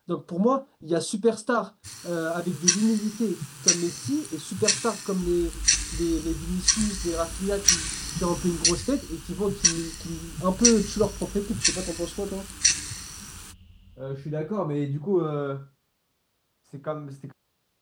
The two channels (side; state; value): both; identical; correlation 1.00